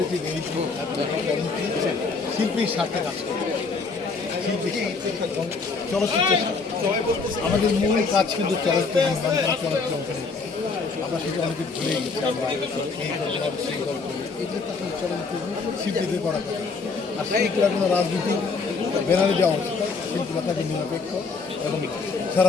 যে এই শিল্পীর স্বার্থে কাজ করে শিল্পী এবং চলচ্চিত্র আমাদের মূল কাজ কিন্তু চলচ্চিত্র নির্মাণ করা চলচ্চিত্র অঙ্কনে আমরা সেটা অনেকে ভুলে গেছি আমরা এই গল্প সেই গল্প এগুলো তো আসলে চলচ্চিত্র শিল্পীদের করা কথা আর শিল্পীরা কোনো রাজনীতি ব্যানারে দেওয়া উচিত শিল্পীরা তাকে নিরপেক্ষ এবং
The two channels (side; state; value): right; quieter; 4.5 dB